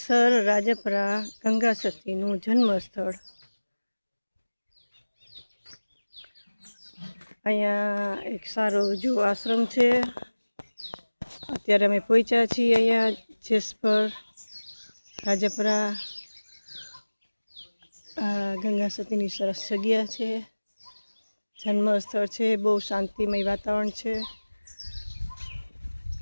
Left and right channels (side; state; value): both; inverted; correlation -1.00